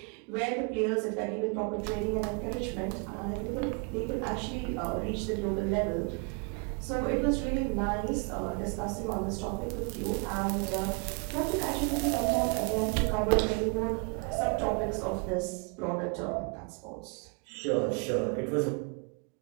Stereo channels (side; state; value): left; quieter; 34.4 dB